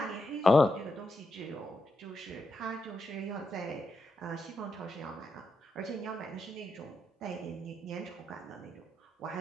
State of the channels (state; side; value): normal; both; correlation 0.84